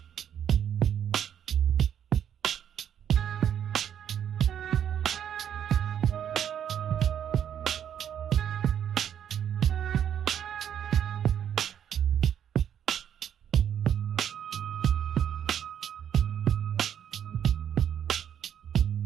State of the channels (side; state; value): left; quieter; 9.3 dB